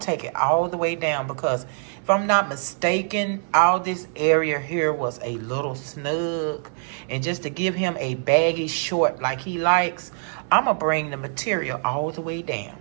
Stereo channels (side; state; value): left; silent; 63 dB below the other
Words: take it all the way down, because if I'm not mistaken, all this area here was a little snug. And just to give him a baggy short like he likes, I'm going to bring the material all the way down,